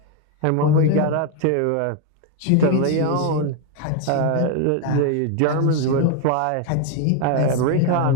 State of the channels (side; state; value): both; different; correlation 0.02